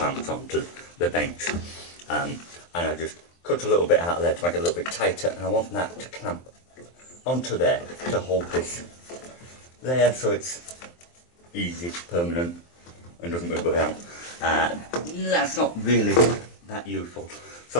onto the bench. And I just cut a little bit out of there to make it a little bit tighter, and I want that to clamp onto there to hold this there so it's easy, permanent, and doesn't move around. That's not really that useful,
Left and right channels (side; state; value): right; late; 23 ms